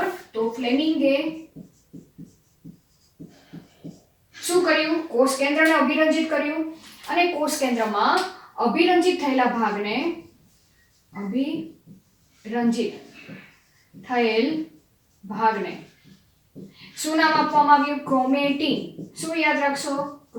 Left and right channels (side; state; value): both; identical; correlation 1.00